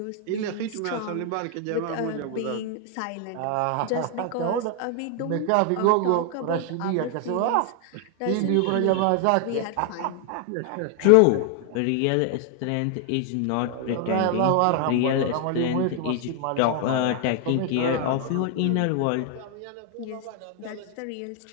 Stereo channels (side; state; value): both; different; correlation 0.00